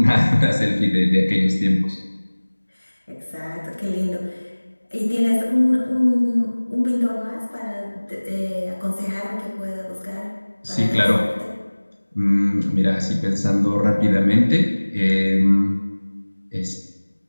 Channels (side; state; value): both; inverted; correlation -1.00